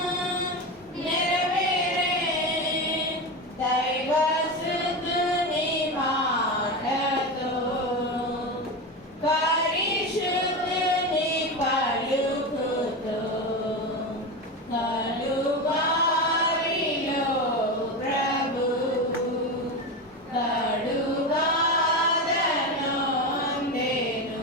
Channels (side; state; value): both; normal; correlation 0.19